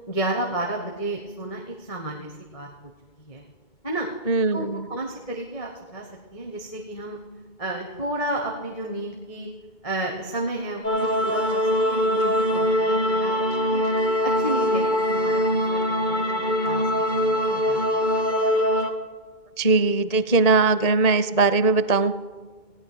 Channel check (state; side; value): late; right; 2.2 ms